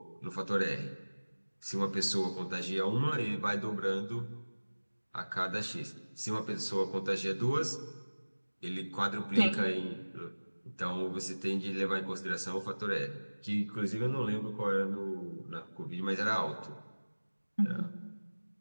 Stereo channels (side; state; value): both; inverted; correlation -1.00